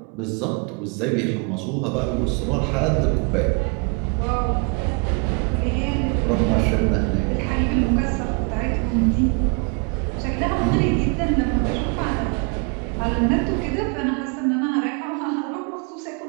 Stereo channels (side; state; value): left; quieter; 34.6 dB